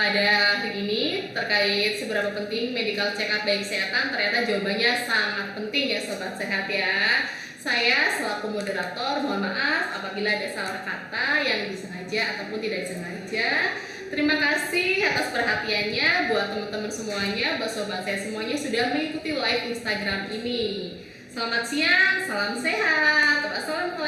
hari ini terkait seberapa penting medical check up baik kesehatan. Ternyata jawabannya sangat penting ya sobat sehat ya. Saya selaku moderator mohon maaf apabila ada salah kata yang disengaja ataupun tidak disengaja. Terima kasih atas perhatiannya buat teman-teman semuanya, buat sobat saya semuanya sudah mengikuti live Instagram ini. Selamat siang, salam sehat.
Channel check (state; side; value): identical; both; correlation 1.00